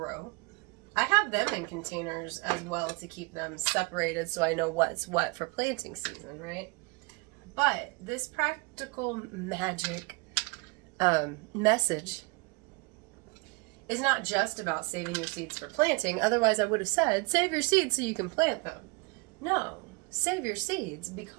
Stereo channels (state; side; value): quieter; left; 27.3 dB